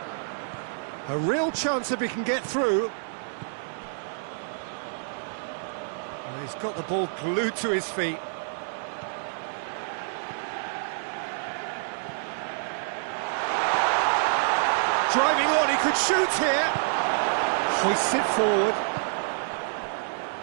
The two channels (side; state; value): left; silent; 58 dB below the other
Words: A real chance if he can get through. Well, he's got the ball glued to his feet. Driving on, he could shoot here. Hoists it forward.